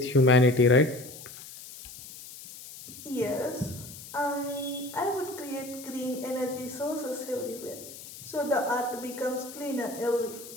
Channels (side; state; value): left; noise; hiss, 15 dB below the sound